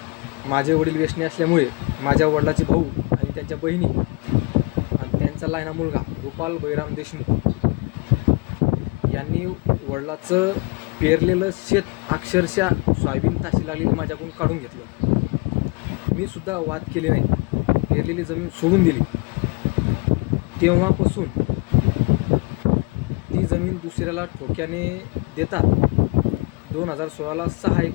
माझे वडील व्यसनी असल्यामुळे माझ्या वडिलाचे भाऊ आणि त्यांच्या बहिणी आणि त्यांचा लहाना मुलगा गोपाल बळीराम देशमुख यांनी वडिलाचं पेरलेलं शेत अक्षरशः सोयाबीन ताशी लागलेली माझ्याकडून काढून घेतलं. मी सुद्धा वाद केले नाही, पेरलेली जमीन सोडून दिली. तेव्हापासून ती जमीन दुसऱ्याला ठोक्याने देतात. 2016ला 6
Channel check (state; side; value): quieter; right; 28.4 dB